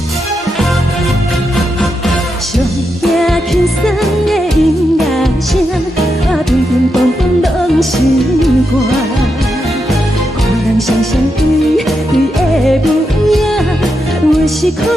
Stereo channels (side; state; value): both; normal; correlation 0.85